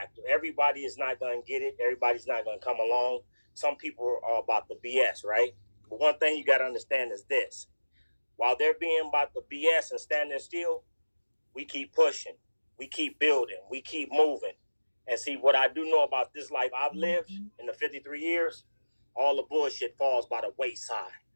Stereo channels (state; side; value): inverted; both; correlation -1.00